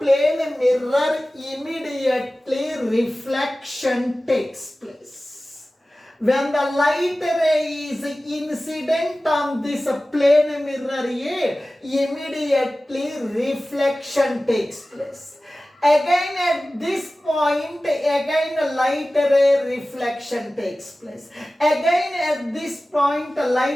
mirror, immediately reflection takes place. When the light ray is incident on this plane mirror A, immediately reflection takes place. Again at this point, again light ray reflection takes place. Again at this point,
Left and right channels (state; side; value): normal; both; correlation 0.96